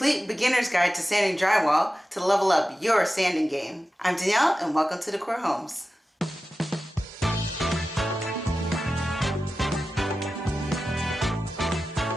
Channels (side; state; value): both; normal; correlation 0.94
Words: beginner's guide to sanding drywall to level up your sanding game. I'm Danielle and welcome to De-cor Homes.